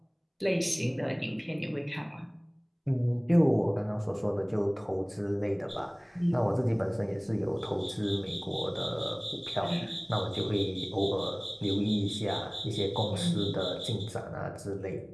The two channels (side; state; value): both; identical; correlation 1.00